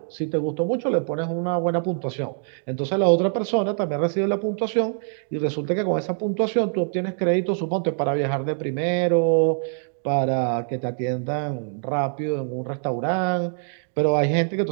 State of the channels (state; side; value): silent; left; digital silence